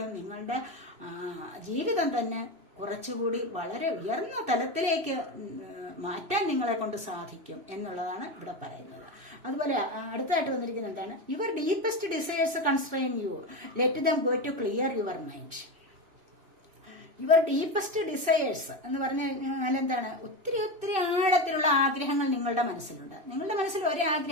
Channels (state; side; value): late; left; 2.9 ms